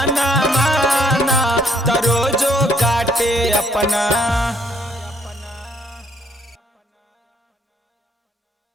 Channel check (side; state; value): both; normal; correlation 0.67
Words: माना। त रोजो काटे अपना